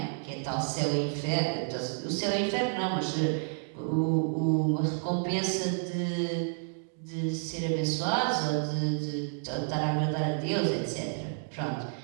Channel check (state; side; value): silent; left; digital silence